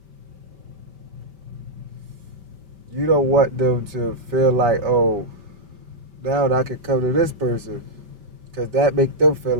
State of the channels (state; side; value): late; left; 5.1 ms